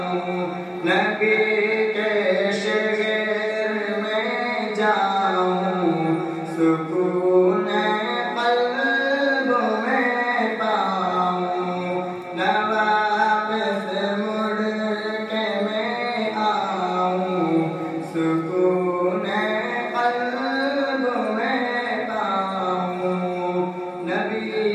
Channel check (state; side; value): identical; both; correlation 1.00